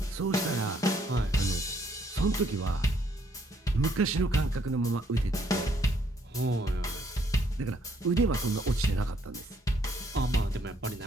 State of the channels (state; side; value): normal; both; correlation 0.68